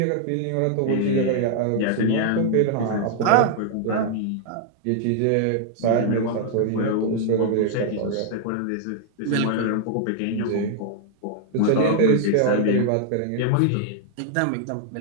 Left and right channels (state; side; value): different; both; correlation 0.00